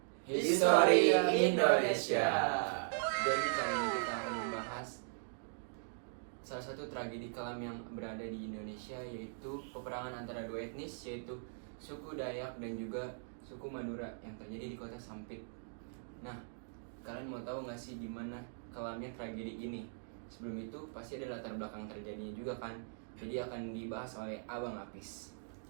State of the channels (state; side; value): silent; left; digital silence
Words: History Indonesia. Jadi kali ini kita akan membahas salah satu tragedi kelam yang berada di Indonesia, yaitu peperangan antara dua etnis, yaitu suku Dayak dan juga suku Madura yang terjadi di kota Sampit. Nah, kalian mau tahu nggak sih gimana kelamnya tragedi ini? Sebelum itu pasti ada latar belakang terjadinya juga kan. Jadi akan dibahas oleh Abang Apis.